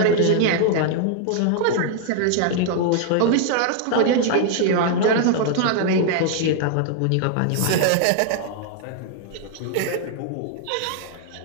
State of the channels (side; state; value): both; different; correlation 0.00